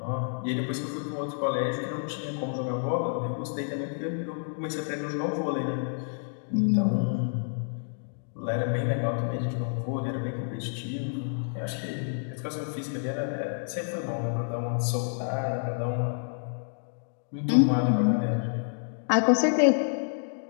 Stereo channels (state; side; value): silent; right; digital silence